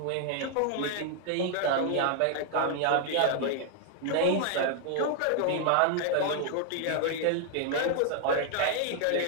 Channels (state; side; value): different; both; correlation 0.00